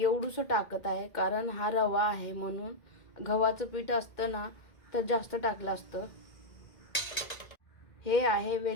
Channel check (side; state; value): right; late; 2.1 ms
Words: एवढंसं टाकत आहे, कारण हा रवा आहे म्हणून. गव्हाचं पीठ असतं ना तर जास्त टाकलं असतं. हे आहे